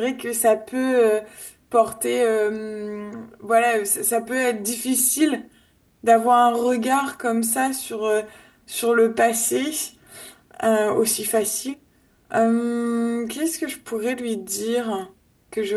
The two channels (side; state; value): both; identical; correlation 1.00